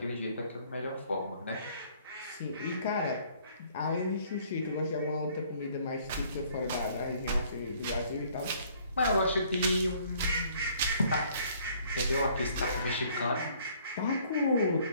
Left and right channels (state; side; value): inverted; both; correlation -0.60